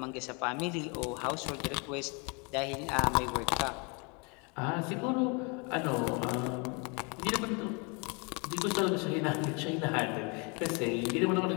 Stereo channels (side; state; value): right; quieter; 32.0 dB